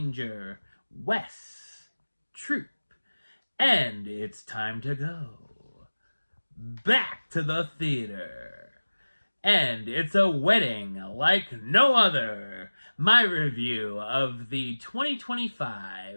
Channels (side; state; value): both; inverted; correlation -1.00